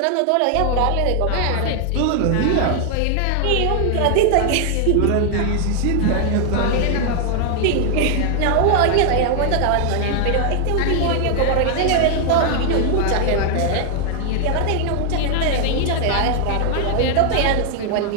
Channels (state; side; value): different; both; correlation 0.00